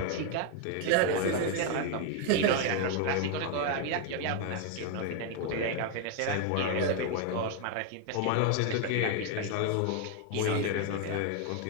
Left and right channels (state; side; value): different; both; correlation 0.01